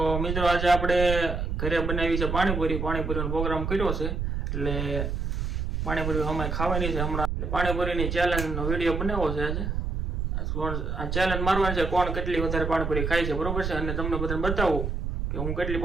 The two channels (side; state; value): right; noise; rumble, 2 dB below the sound